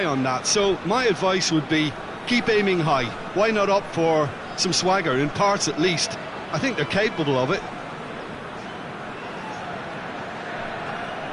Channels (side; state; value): both; identical; correlation 1.00